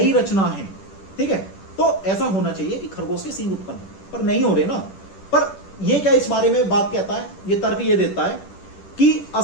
रचना है, ठीक है, तो ऐसा होना चाहिए कि खरगोश के सींग उत्पन्न हो, पर नहीं हो रहे ना। पर ये क्या इस बारे में बात कहता है, ये तर्क ये देता है कि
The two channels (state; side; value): late; right; 10 ms